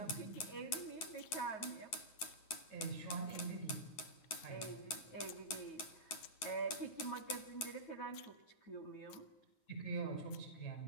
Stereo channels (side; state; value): right; late; 9.6 ms